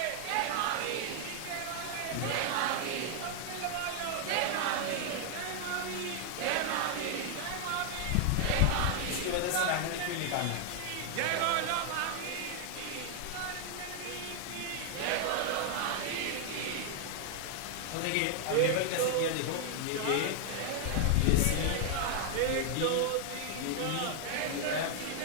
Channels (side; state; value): both; different; correlation 0.00